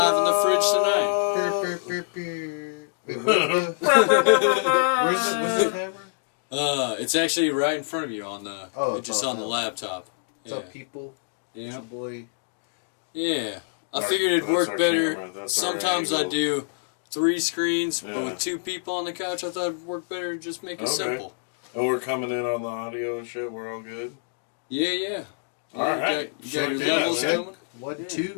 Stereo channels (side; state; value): right; silent; digital silence